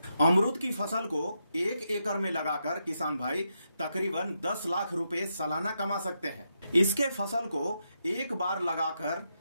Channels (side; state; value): both; inverted; correlation -0.83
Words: अमरूद की फसल को 1 एकड़ में लगाकर किसान भाई तकरीबन 10 लाख रुपए सालाना कमा सकते हैं। इसके फसल को एक बार लगाकर